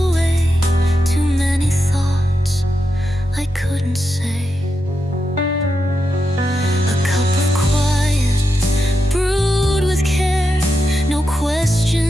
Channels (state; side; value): normal; both; correlation 0.87